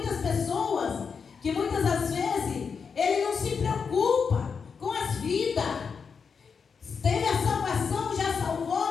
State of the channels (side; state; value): right; quieter; 5.9 dB